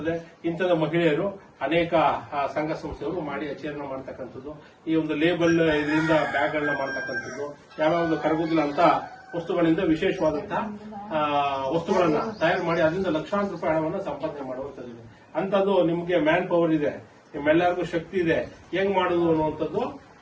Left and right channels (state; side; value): identical; both; correlation 1.00